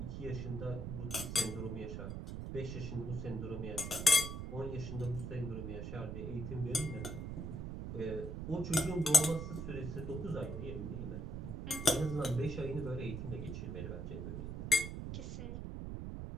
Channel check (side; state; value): right; noise; rumble, 5 dB below the sound